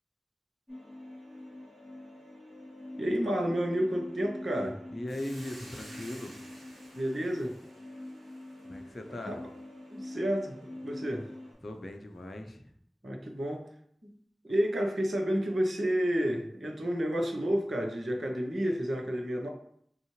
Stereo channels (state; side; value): normal; both; correlation 0.95